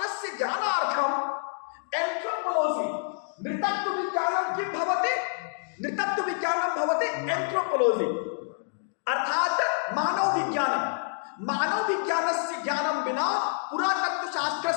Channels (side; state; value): right; silent; digital silence